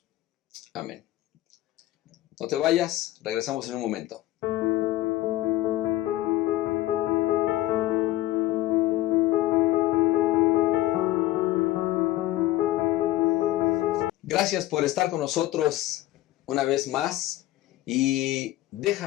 Amén. No te vayas, regresamos en un momento. Gracias por estar con nosotros una vez más y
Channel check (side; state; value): right; quieter; 15.8 dB